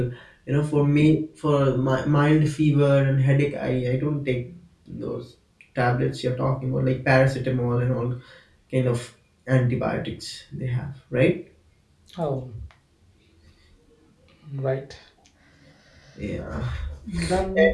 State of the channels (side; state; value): both; identical; correlation 1.00